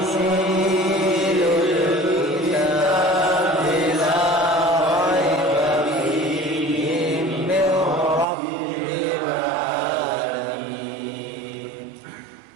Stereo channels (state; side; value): drops out; left; at 8.2 s